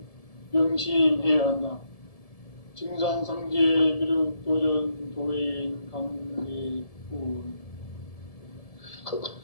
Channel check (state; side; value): late; right; 1.7 ms